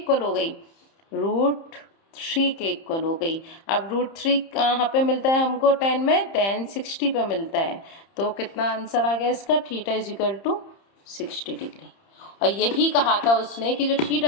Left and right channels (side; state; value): right; late; 30 ms